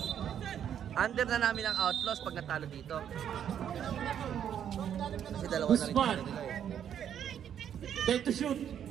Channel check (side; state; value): left; quieter; 9.3 dB